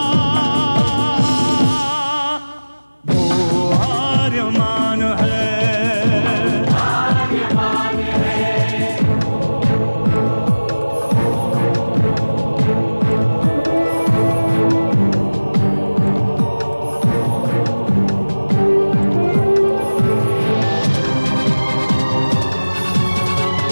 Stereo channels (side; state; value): both; inverted; correlation -1.00